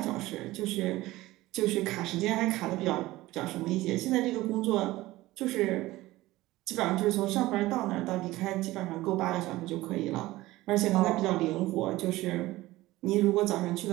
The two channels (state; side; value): quieter; left; 17.9 dB